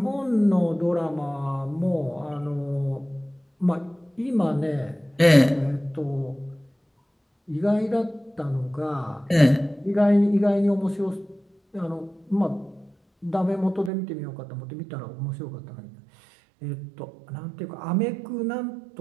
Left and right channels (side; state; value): left; drops out; at 13.9 s